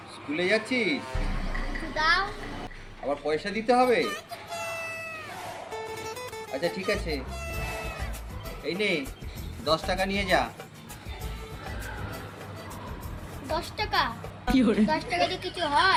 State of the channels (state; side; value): identical; both; correlation 1.00